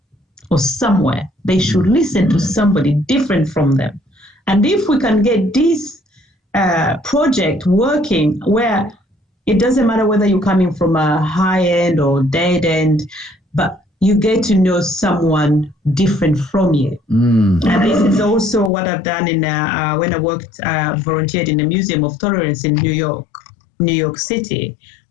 or somewhere. They should listen to somebody different from them. And if we can get this project working where it doesn't matter whether you're coming from a high end or dead end, but you get to know someone different from you. And this is also what I've done in when I volunteered in the Museum of Tolerance in New York City.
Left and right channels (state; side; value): drops out; right; at 18.7 s